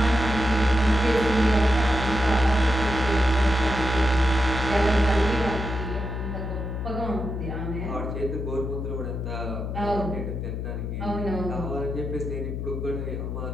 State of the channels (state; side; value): noise; left; hum, 4 dB below the sound